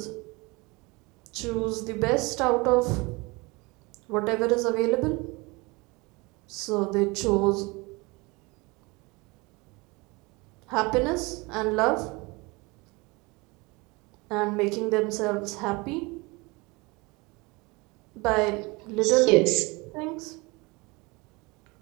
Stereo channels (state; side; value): quieter; left; 25.5 dB